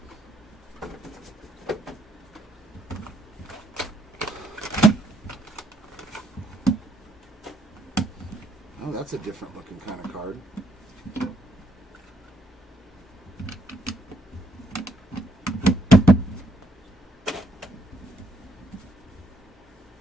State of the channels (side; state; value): both; normal; correlation 0.71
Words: Oh, that's a different looking kind of card.